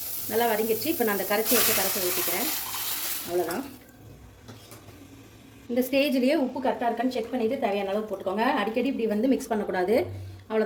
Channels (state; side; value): identical; both; correlation 1.00